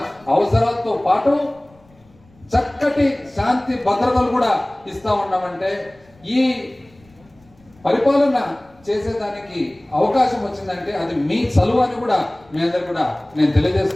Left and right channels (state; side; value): noise; left; rumble, 30 dB below the sound